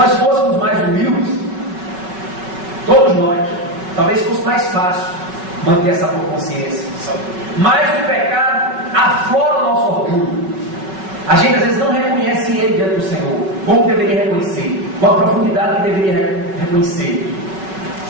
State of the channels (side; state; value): left; late; 5.4 ms